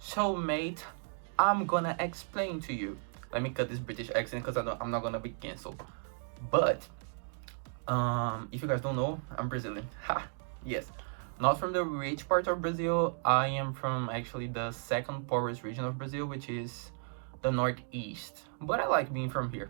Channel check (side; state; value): left; silent; 55 dB below the other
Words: mate, I'm gonna explain to you. Let me cut this British accent because I'm not gonna be cancelled. But if you guys don't know, I'm Brazilian. Ha, yes. Not from the rich part of Brazil. I am from actually the second poorest region of Brazil, which is the northeast. But I like being from